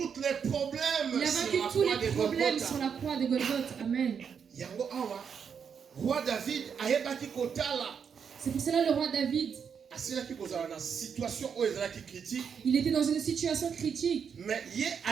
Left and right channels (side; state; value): left; quieter; 6.9 dB